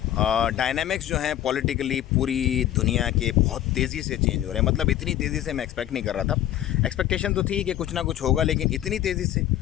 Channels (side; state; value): right; quieter; 12.3 dB